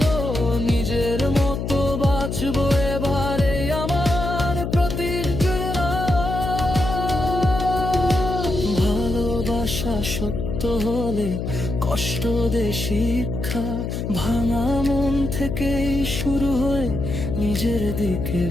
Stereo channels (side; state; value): left; noise; hum, 3 dB below the sound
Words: নিজের মতো বাঁচবো এবারে আমার প্রতিজ্ঞা। ভালোবাসা সত্য হলে কষ্ট দে শিক্ষা, ভাঙা মন থেকেই শুরু হয়ে নিজের দিকে